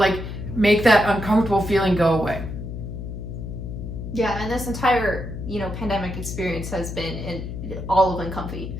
make that uncomfortable feeling go away. Yeah, and this entire pandemic experience has been in all of Uncomfy.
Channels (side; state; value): left; noise; hum, 7 dB below the sound